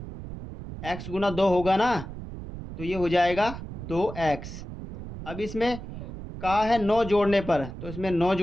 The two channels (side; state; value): right; noise; rumble, 10 dB below the sound